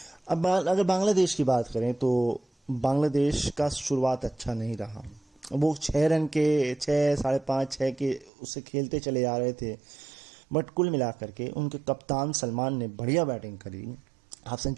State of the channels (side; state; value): left; drops out; at 8.3 s